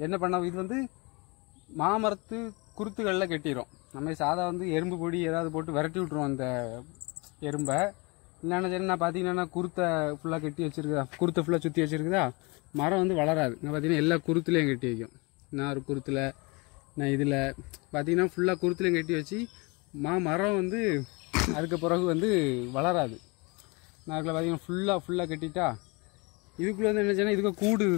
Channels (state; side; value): quieter; right; 27.7 dB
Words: என்ன பண்ண, இது வந்து மாமரத்து குருத்துகளில் கட்டிடும். நம்ம சாதா வந்து எறும்பு பொடி ஏதாவது போட்டு விரட்டி விட்ருவோம் அந்த எறும்பை. இல்லைன்னா சரி நான் பார்த்தீங்கன்னா குருத்தை ஃபுல்லாக கட்டி வச்சுருக்குதா, குருத்தை ஃபுல்லாக சுற்றி வச்சுருக்குதா, மரம் வந்து வளராது. நான் பார்த்தீங்கன்னா எல்லா குருத்துலேயும் கட்டி வைக்கும். நான் ஒரு குருத்தில், நான் இதில் பார்த்தீங்கன்னா ஃபுல்லாக குருத்துலேயும் கட்டி வச்சு மரம் வந்து அதுக்கு பிறகு வந்து வளராது. நான் அதில் பார்த்தீங்கன்னா ஃபுல்லாக கட்டிட்டா இதுக்குள்ளே வந்து என்ன செய்யணும், இதுக்கு கூடு